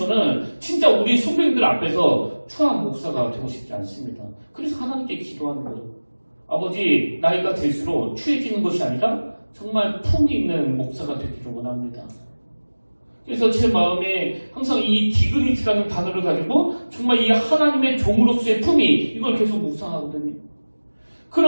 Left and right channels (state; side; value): inverted; both; correlation -1.00